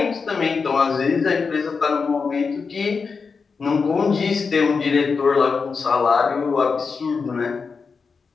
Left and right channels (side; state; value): right; quieter; 5.1 dB